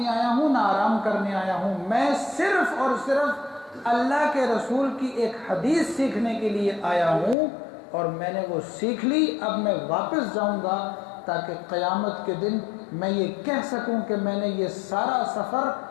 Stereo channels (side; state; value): right; drops out; at 7.4 s